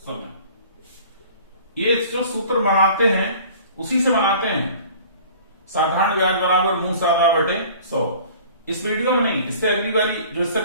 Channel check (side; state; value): both; inverted; correlation -0.47